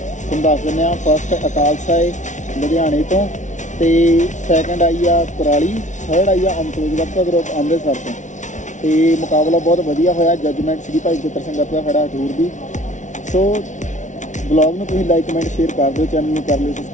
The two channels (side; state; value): right; late; 0.36 ms